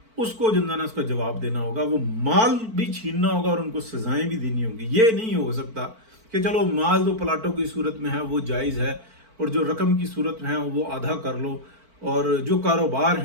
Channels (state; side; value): late; left; 4.5 ms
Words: اس کو جنزانہ اس کا جواب دینا ہوگا، وہ مال بھی چھیننا ہوگا اور ان کو سزائیں بھی دینی ہوں گی۔ یہ نہیں ہو سکتا کہ چلو مال تو پلاٹوں کی صورت میں ہے وہ جائز ہے، اور جو رقم کی صورت میں ہے وہ آدھا کر لو، اور جو کاروبار